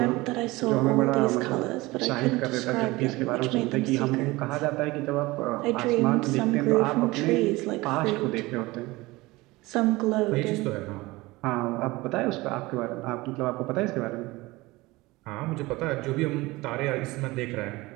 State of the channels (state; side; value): quieter; left; 21.0 dB